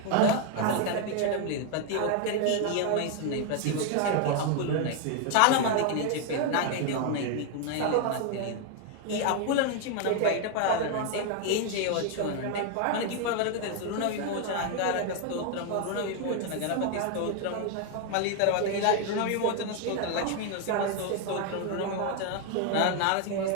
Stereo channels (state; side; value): different; both; correlation 0.00